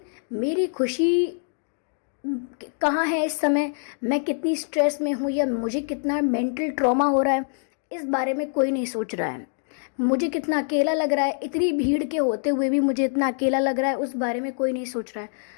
मेरी खुशी कहाँ है इस समय, मैं कितनी स्ट्रेस में हूँ या मुझे कितना मेंटल ट्रॉमा हो रहा है, इस बारे में कोई नहीं सोच रहा है। मुझे कितना अकेला लग रहा है, इतनी भीड़ के होते हुए भी मुझे इतना अकेला लग रहा है, उस बारे में कोई नहीं सोच रहा है।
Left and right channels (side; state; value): right; silent; digital silence